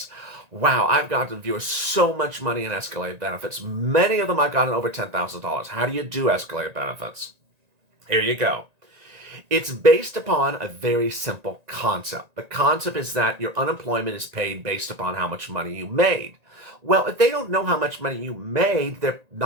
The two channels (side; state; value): left; late; 1.9 ms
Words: Wow, I've gotten viewers so much money in escalated benefits. Many of them I've gotten over $10,000. How do you do escalated benefits? Here you go. It's based upon a very simple concept. The concept is that your unemployment is paid based upon how much money you made. Well, if they don't know how much money you made, they're